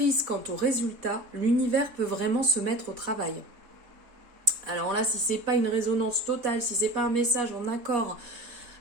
quant au résultat, l'univers peut vraiment se mettre au travail. Alors là, si ce n'est pas une résonance totale, si ce n'est pas un message en accord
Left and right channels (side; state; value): left; late; 4.2 ms